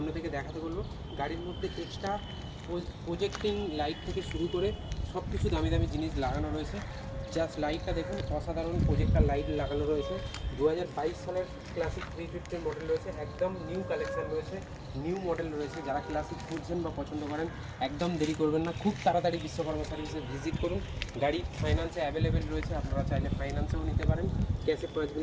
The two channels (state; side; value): identical; both; correlation 1.00